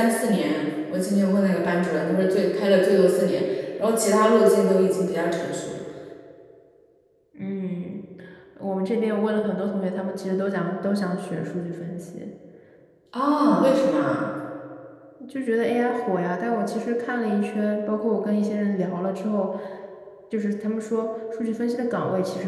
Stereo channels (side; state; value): both; identical; correlation 1.00